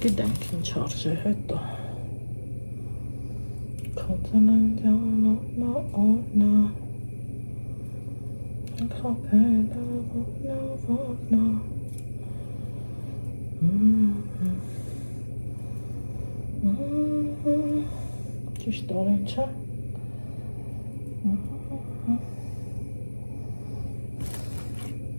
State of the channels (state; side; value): inverted; both; correlation -1.00